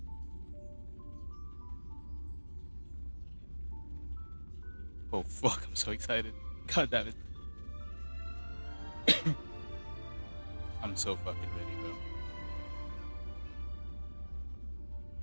Oh fuck! I'm so excited. God damn it! I'm so fucking ready, bro.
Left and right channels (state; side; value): inverted; both; correlation -1.00